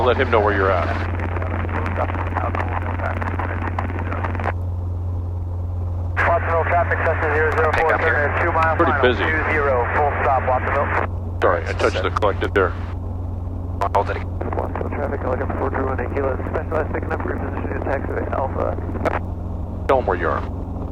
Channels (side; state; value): both; identical; correlation 1.00